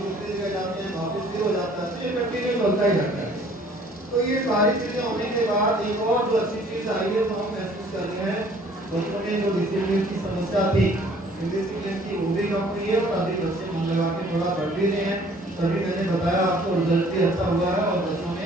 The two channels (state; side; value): normal; both; correlation 0.56